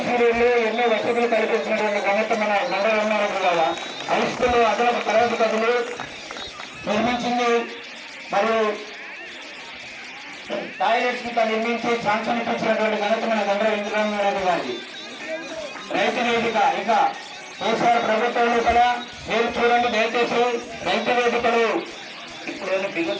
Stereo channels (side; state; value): both; identical; correlation 1.00